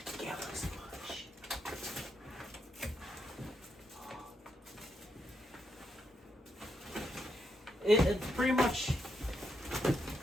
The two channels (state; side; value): normal; both; correlation 0.81